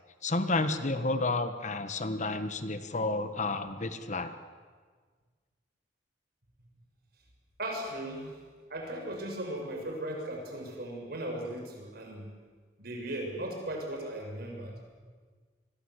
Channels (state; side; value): normal; both; correlation 0.17